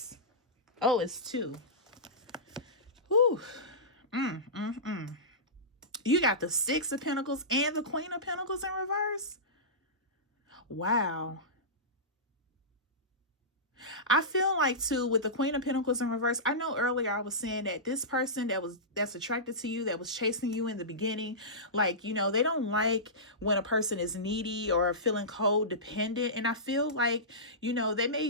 Oh, it's 2. Whew. You got the 6 of Pentacles and the Queen of Pentacles in reverse. Wow. I feel like too, with the Queen of Pentacles in reverse, I know earlier I was saying that this person that's attracted to you, that was chasing you in the beginning, like, you know, they don't like when a person is needy or feeling codependent. And I feel like, you know, they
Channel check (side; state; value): both; normal; correlation -0.18